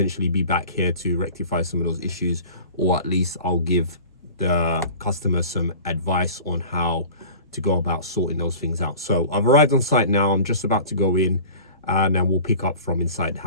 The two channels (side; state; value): both; inverted; correlation -0.41